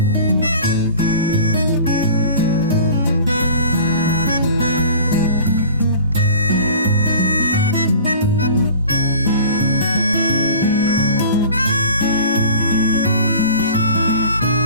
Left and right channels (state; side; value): inverted; both; correlation -0.43